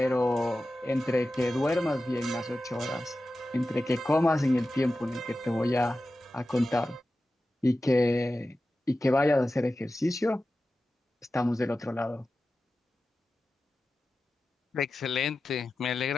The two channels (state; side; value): normal; both; correlation 0.94